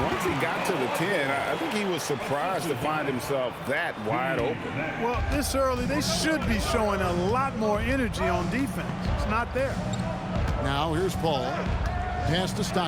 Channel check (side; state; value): both; identical; correlation 1.00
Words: once he got to the 10, I think he was surprised to find himself that wide open. Well, this early, they should be showing a lot more energy on defense. It's not there. Now here's Paul. Pass to